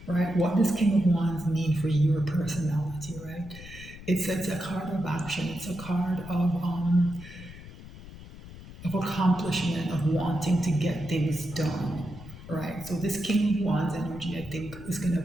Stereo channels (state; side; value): noise; left; rumble, 15 dB below the sound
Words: right? What does King of Wands mean for your personality, right? It's a card of action. It's a card of accomplishment, of wanting to get things done, right? So this King of Wands energy, I think, is going